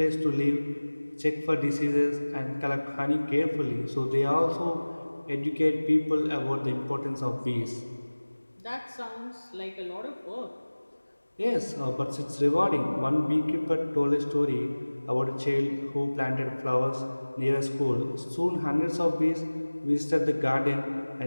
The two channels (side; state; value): both; inverted; correlation -1.00